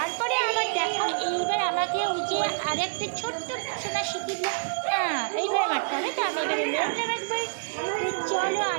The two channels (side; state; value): left; silent; 60 dB below the other